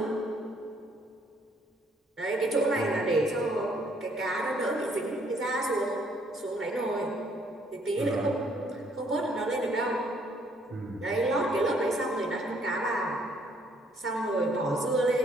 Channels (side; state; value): both; normal; correlation 0.66